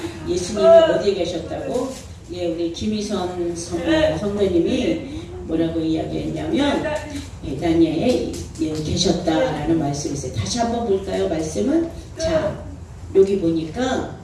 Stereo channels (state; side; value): identical; both; correlation 1.00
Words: 예수님이 어디에 계셨다고? 예, 우리 김희선 성도님이 뭐라고 이야기했냐면 베다니아에 계셨다라는 말씀이 있어요. 다시 한번 볼까요? 말씀은 자, 여기 보니까